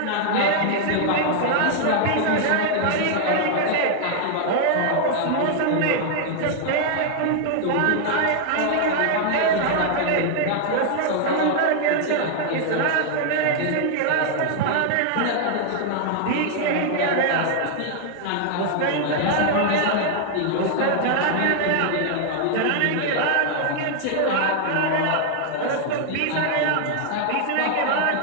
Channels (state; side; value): different; both; correlation 0.00